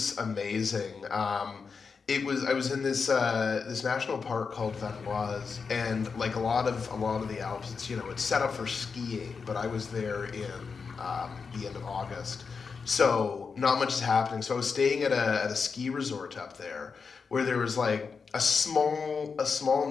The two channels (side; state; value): right; quieter; 5.3 dB